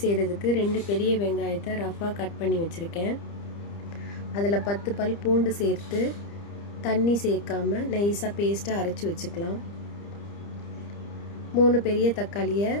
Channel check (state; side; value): late; right; 30 ms